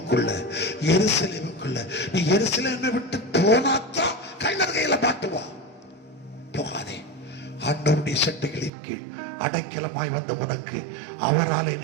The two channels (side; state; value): left; drops out; at 8.7 s